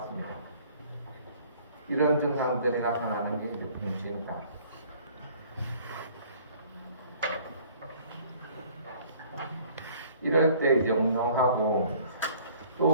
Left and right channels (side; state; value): both; inverted; correlation -0.55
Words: 이런 증상들이 나타나는 게 이제 병진이다. 이럴 때 이제 운동하고